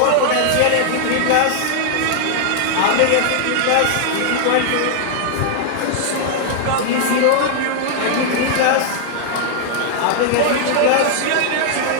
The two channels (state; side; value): different; both; correlation 0.00